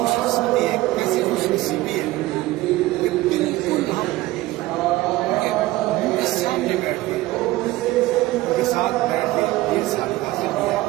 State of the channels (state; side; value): quieter; left; 17.8 dB